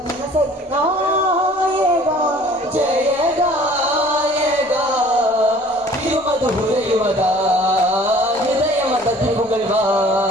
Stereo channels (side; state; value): both; normal; correlation 0.51